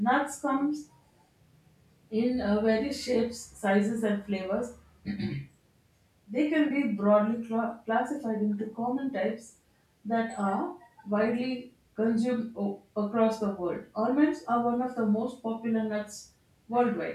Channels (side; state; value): both; identical; correlation 1.00